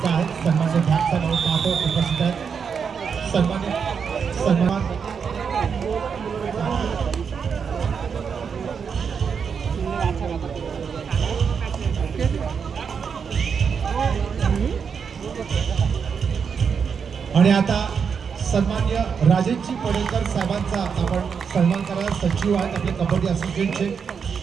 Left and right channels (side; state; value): left; quieter; 6.4 dB